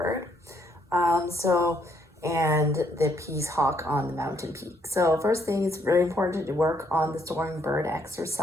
And the peace hawk on the mountain peak. So first thing, it's very important to work on the soaring bird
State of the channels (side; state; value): both; normal; correlation 0.70